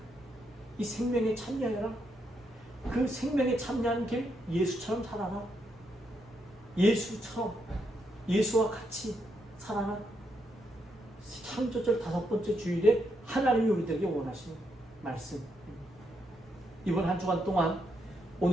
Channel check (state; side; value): normal; both; correlation 0.79